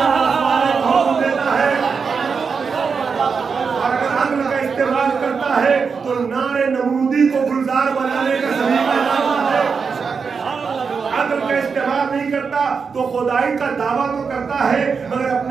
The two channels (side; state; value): left; quieter; 5.5 dB